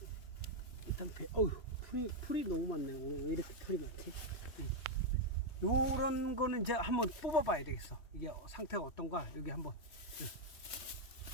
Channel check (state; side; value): late; right; 3.2 ms